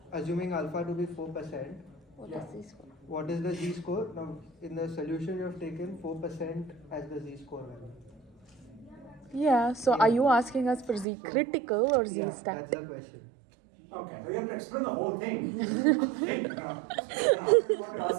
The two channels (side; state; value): left; drops out; at 11.1 s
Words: assuming alpha to be 4%, Yeah. what is the Z score? Now in the solution you have taken 4% as the Z score value. Yeah, so are you asking us for Z-critical or Yeah, Z-stat? that's the question. Okay, so you have to explain the whole thing. Think now. What you're